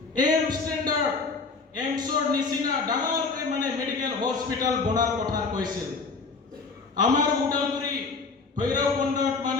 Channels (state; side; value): quieter; right; 4.4 dB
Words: এম ষ্টেণ্ডাৰ্ড এমছৰ নিচিনা ডাঙৰকৈ মানে মেডিকেল হস্পিটাল বনাৰ কথা কৈছিল আমাৰ উদালগুৰি ভৈৰৱকুণ্ডত